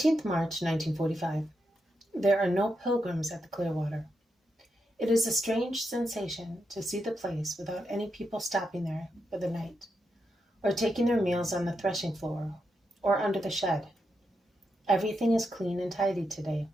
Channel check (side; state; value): both; normal; correlation 0.84